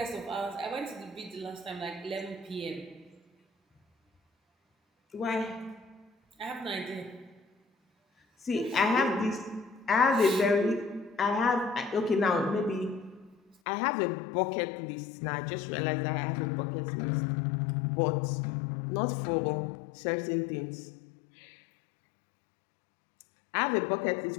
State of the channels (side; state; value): right; drops out; at 13.6 s